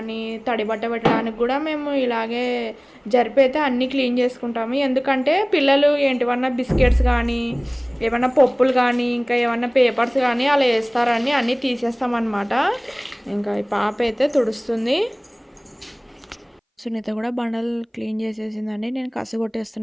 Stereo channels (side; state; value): both; identical; correlation 1.00